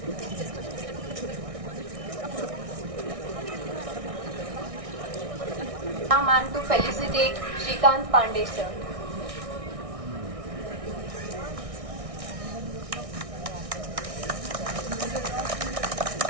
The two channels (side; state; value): left; late; 1.6 ms